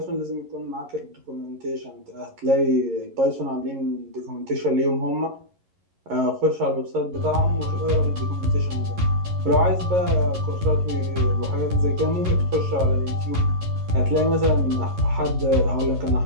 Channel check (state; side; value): late; left; 11 ms